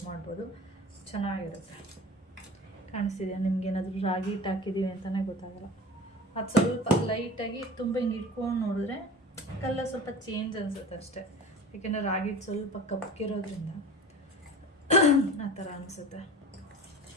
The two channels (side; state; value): both; normal; correlation 0.37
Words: ಮಾಡ್ಬೋದು, ಚೆನ್ನಾಗಿರುತ್ತೆ. ಕಾಣಿಸ್ತಿದೆಯಾ ನಿಮ್ಗೇನಾದರೂ ರಾಗಿ ಹಿಟ್ಟು ಹಾಕಿದ್ದೀವಿ ಅಂತಲೇ ಗೊತ್ತಾಗಲ್ಲ. ಅದು ಸ್ವಲ್ಪ ಲೈಟಾಗಿ ತುಂಬ ಹಿಂಗೆ ಇಟ್ಕೊಂಡು ನೋಡಿದ್ರೆ ಕಲ್ಲ ಸ್ವಲ್ಪ ಚೇಂಜ್ ಅನಿಸುತ್ತೆ ಅಷ್ಟೇ, ಏಕೆಂದರೆ ರಾಗಿ ಹಿಟ್ಟು ಸ್ವಲ್ಪ ಕಪ್ಪಗಿರೋದ್ರಿಂದ ಆ ಥರ ಅನಿಸುತ್ತೆ.